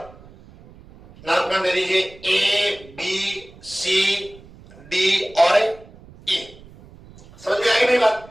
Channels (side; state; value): right; noise; rumble, 22 dB below the sound